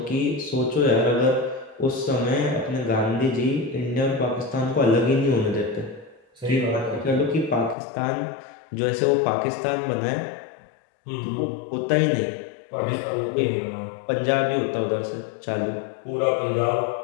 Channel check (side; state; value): right; drops out; at 7.8 s